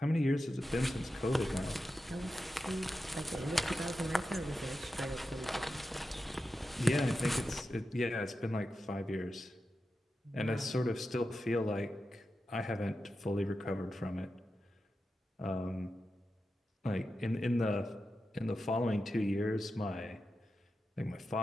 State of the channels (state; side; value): normal; both; correlation 0.90